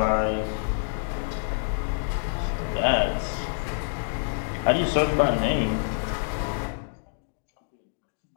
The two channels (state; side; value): silent; right; digital silence